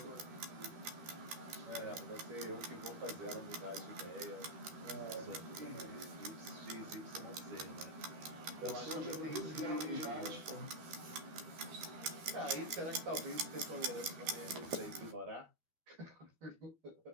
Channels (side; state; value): left; late; 13 ms